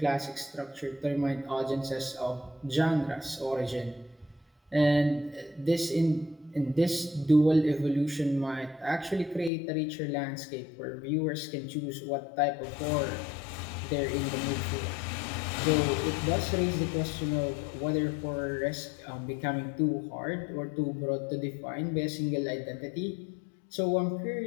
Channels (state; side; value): drops out; right; at 9.5 s